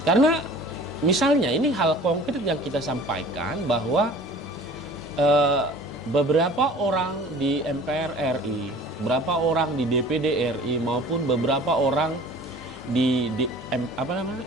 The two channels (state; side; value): normal; both; correlation 0.45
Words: karena misalnya ini hal konkret yang kita sampaikan bahwa beberapa orang di MPR RI, beberapa orang di DPD RI maupun beberapa orang di